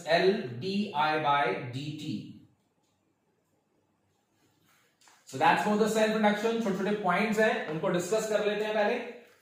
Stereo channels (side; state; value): both; identical; correlation 1.00